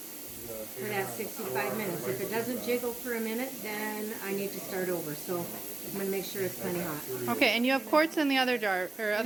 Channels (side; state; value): left; quieter; 3.0 dB